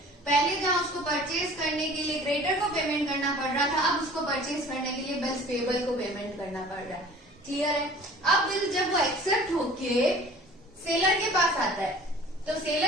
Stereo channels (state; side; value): normal; both; correlation 0.46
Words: पहले जहां उसको परचेज करने के लिए क्रेडिटर को पेमेंट करना पड़ रहा था, अब उसको परचेज करने के लिए बिल्स पेबल को पेमेंट करना पड़ रहा है। क्लियर है? अब बिल जब वो एक्सेप्ट होके सेलर के पास आता है तो